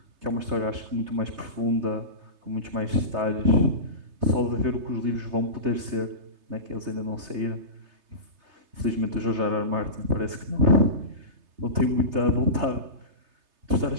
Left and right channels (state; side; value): late; left; 3.3 ms